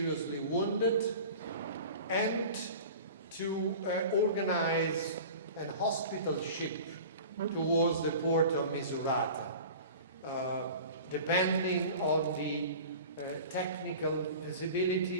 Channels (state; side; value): inverted; both; correlation -0.39